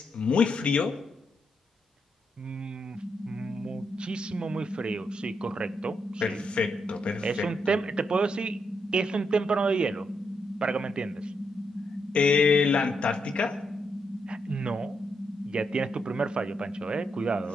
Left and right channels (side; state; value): both; normal; correlation 0.80